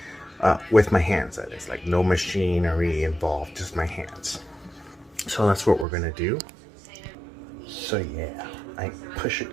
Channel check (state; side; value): drops out; left; at 5.9 s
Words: With my hands, that is. Like, no machinery involved, just my hands. So that's what we're gonna do. So yeah, I push